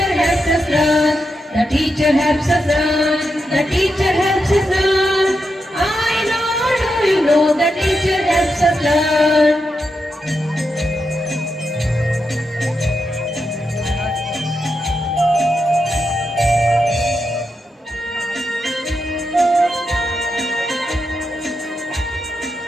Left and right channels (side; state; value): both; normal; correlation 0.85